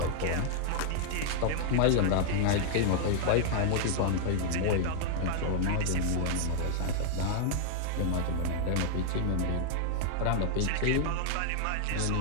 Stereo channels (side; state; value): both; different; correlation 0.00